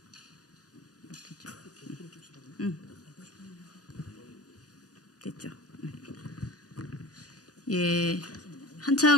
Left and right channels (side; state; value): right; late; 0.68 ms